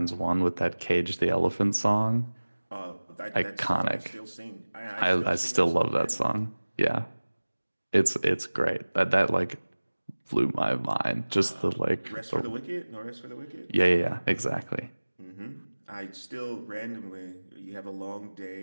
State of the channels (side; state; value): both; inverted; correlation -1.00